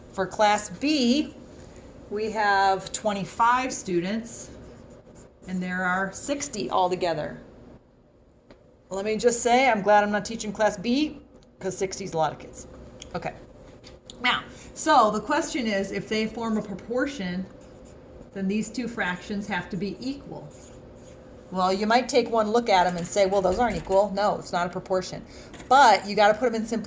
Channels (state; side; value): identical; both; correlation 1.00